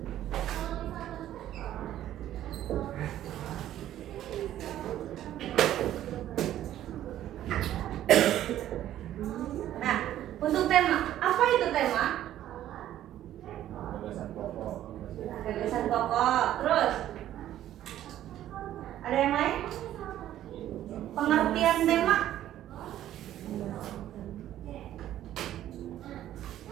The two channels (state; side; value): quieter; left; 12.4 dB